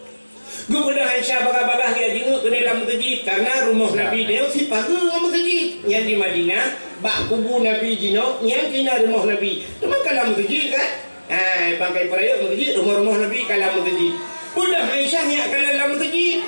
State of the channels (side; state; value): both; inverted; correlation -1.00